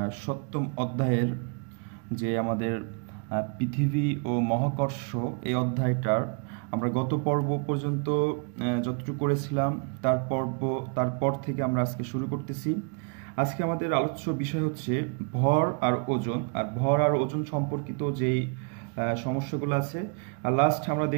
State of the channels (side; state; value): left; quieter; 37.2 dB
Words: সপ্তম অধ্যায়ের যে আমাদের পৃথিবী ও মহাকর্ষ এই অধ্যায়টার আমরা গত পর্ব পর্যন্ত যতটুকু করেছিলাম তারপর থেকে আমরা আজকে শুরু করতেছি। আজকে আমাদের আলোচ্য বিষয় হচ্ছে ভর আর ওজন, আর ভর আর ওজন সম্পর্কিত যেই সমস্যাগুলো আছে। আর লাস্ট আমরা